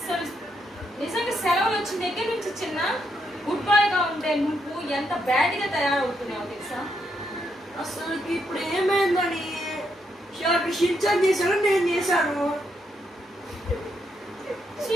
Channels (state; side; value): normal; both; correlation 0.78